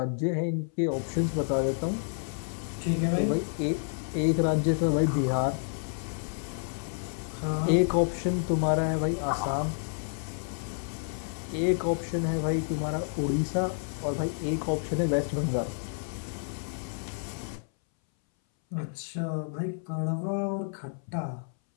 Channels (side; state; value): right; silent; 58 dB below the other